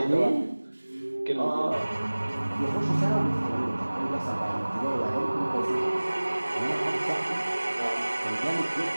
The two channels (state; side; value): inverted; both; correlation -1.00